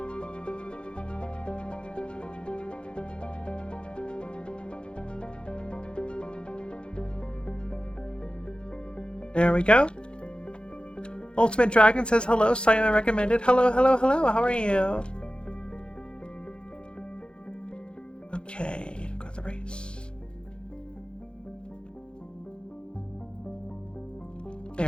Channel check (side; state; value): right; late; 0.054 ms